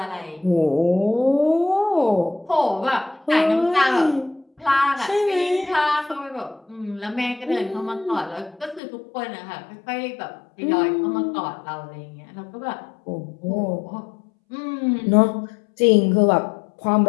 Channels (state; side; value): drops out; right; at 8.8 s